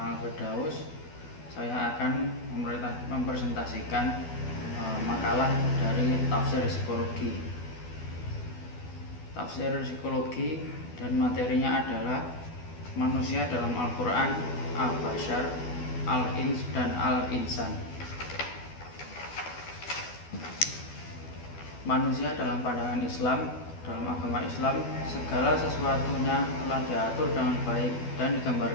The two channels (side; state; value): right; late; 12 ms